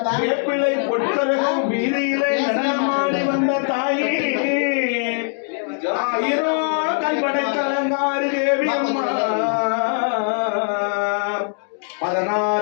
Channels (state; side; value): silent; right; 56 dB below the other